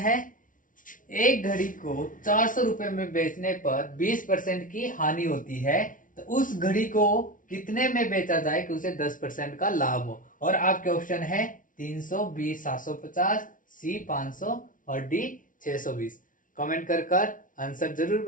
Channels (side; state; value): right; late; 0.38 ms